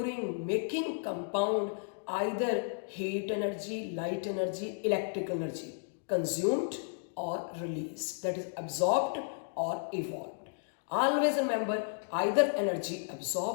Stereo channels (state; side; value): silent; right; digital silence